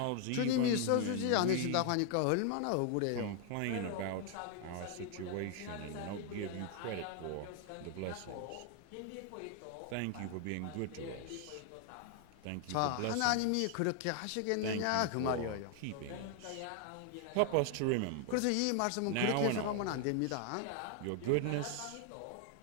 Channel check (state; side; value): different; both; correlation 0.00